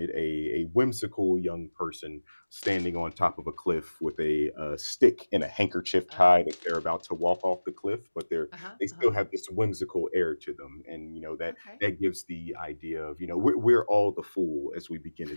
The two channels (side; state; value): both; inverted; correlation -1.00